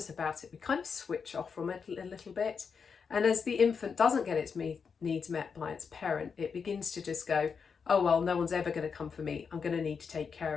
about it, we kind of switch off from it a little bit. And as the infant doesn't get its needs met by its parent, it begins to just go, oh, well, no one's ever going to come for me. I'm going to need to take care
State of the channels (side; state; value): right; quieter; 5.9 dB